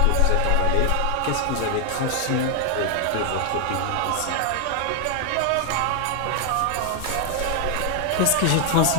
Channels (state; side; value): different; both; correlation 0.00